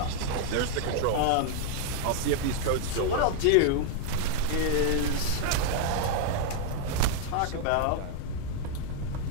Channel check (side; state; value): both; different; correlation 0.00